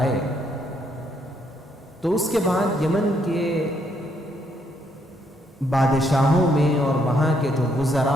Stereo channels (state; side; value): normal; both; correlation 0.72